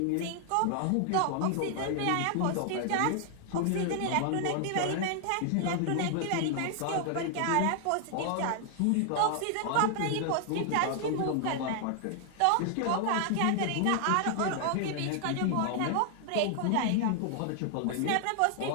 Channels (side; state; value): both; different; correlation 0.00